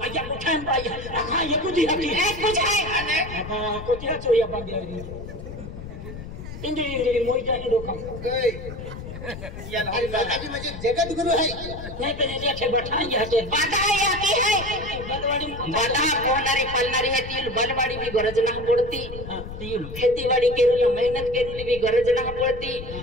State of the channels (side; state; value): left; noise; rumble, 11 dB below the sound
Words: आया बोथन बाय हां ये कुछ है अने अबा कोतिया चोया बांधिया इंद्री मोइटा के दोखम या माताजी मुझे जगत गुरु है नहीं पे देखे बैठाई हटे बाधा या की है बलवाड़ी बाधा कोनारी पलनारी है तिल बलवाड़ी भी गरज ना पड़ती तिल खेतीवाड़ी केरुल मेहनत केरुल भी गरज ना पड़ती